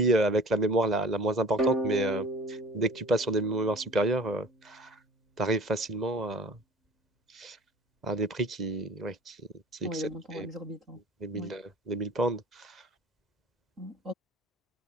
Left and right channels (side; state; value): both; normal; correlation 0.45